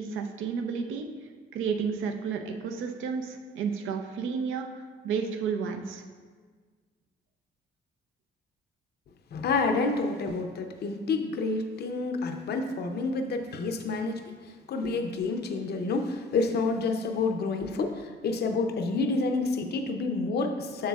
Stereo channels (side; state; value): both; normal; correlation 0.45